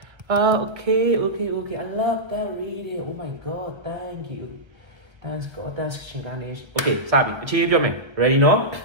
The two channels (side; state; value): left; late; 1.1 ms